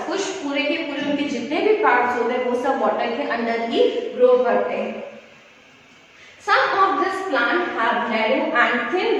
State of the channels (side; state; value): both; identical; correlation 1.00